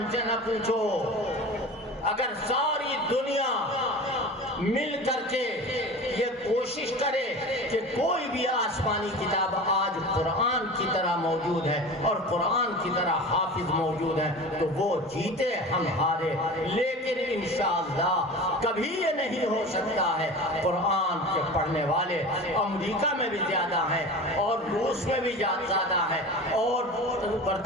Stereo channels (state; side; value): normal; both; correlation 0.34